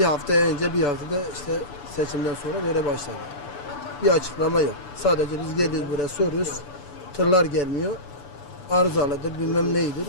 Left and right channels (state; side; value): late; right; 6.9 ms